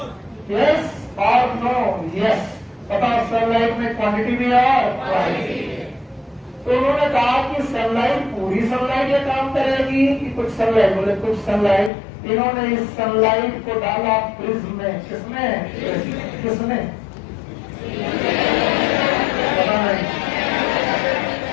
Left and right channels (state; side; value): drops out; right; at 11.9 s